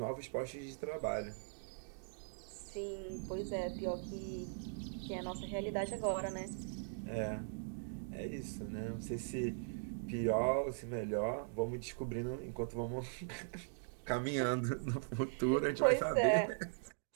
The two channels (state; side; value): silent; left; digital silence